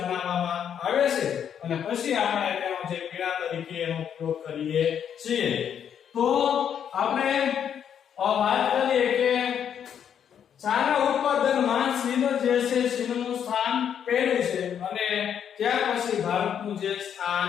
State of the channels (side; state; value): right; quieter; 8.6 dB